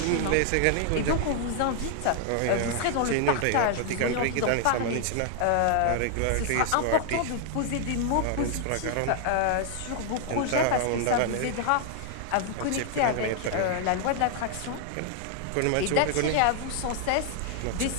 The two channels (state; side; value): different; both; correlation 0.00